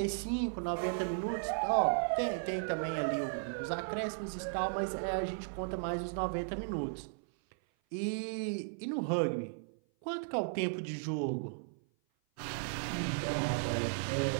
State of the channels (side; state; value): left; silent; 54 dB below the other